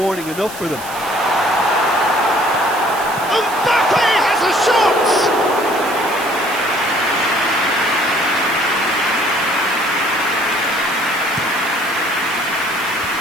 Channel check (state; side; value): noise; right; hiss, 13 dB below the sound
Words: enough for them. Mbappe has a shot!